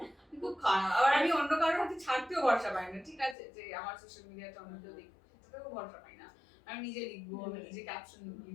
খুব খারাপ। আবার আমি অন্য কারোর হাতে ছাড়তেও ভরসা পাই না। ঠিক আছে যে আমার সোশ্যাল মিডিয়াটা অন্য কেউ দেখুক সেটাতেও ভরসা পাই না। আমি নিজে লিখবো, আমি নিজে ক্যাপশন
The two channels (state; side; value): drops out; right; at 3.4 s